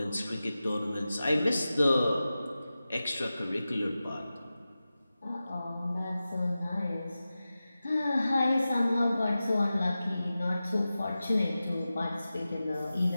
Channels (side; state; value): both; inverted; correlation -0.94